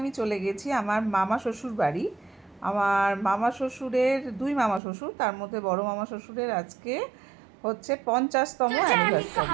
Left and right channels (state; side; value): drops out; left; at 4.8 s